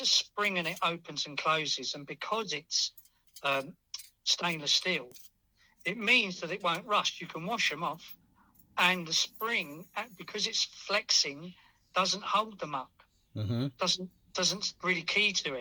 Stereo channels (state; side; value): identical; both; correlation 1.00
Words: a spring and it opens and closes, and because it's stainless steel, it means that it won't rust. You can wash them off, and the spring, because it's flexing, doesn't hold them up. Doesn't really key to